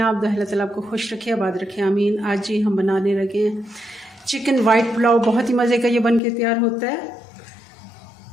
आप? अल्लाह ताला आपको खुश रखे, आबाद रखे, आमीन। आज जी हम बनाने लगे हैं चिकन वाइट पुलाव। बहुत ही मज़े का ये बन के तैयार होता है।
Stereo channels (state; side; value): drops out; right; at 6.2 s